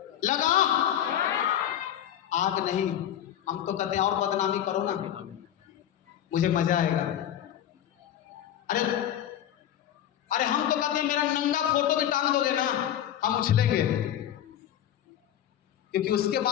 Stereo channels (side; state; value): right; quieter; 10.9 dB